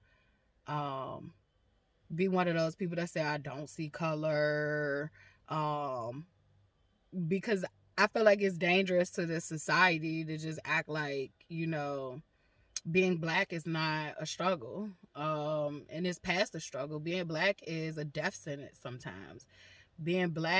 be one of those people that say I don't see color, because I feel like it's dangerous to this society to just act like, being black is not a struggle, and it's past a struggle. Being black is a death sentence sometimes. Being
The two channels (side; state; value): both; identical; correlation 1.00